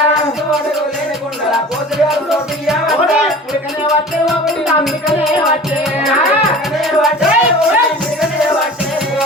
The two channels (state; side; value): normal; both; correlation 0.41